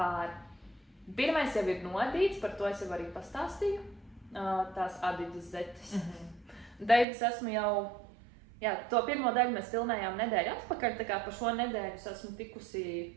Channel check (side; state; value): left; drops out; at 7.1 s